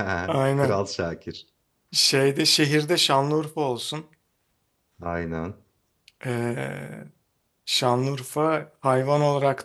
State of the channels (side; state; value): both; identical; correlation 1.00